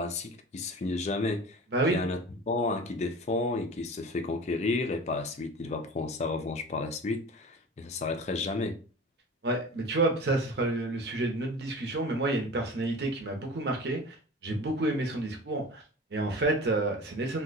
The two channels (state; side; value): normal; both; correlation 0.36